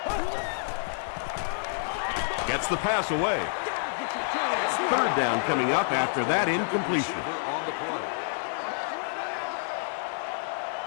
Gets the pass away. 3rd down coming up after that incompletion.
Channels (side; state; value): right; silent; 56 dB below the other